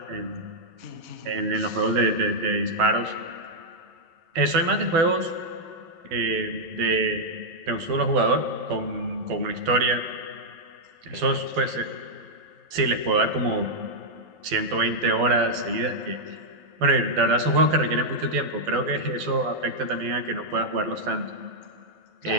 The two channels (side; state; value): left; late; 11 ms